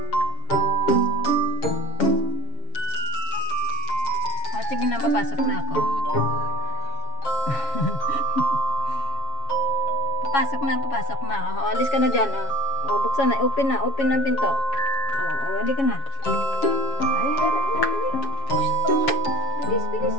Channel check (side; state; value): right; late; 7.2 ms